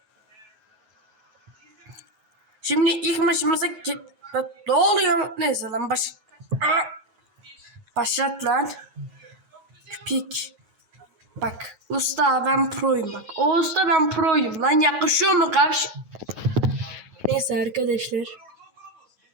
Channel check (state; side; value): late; left; 9.3 ms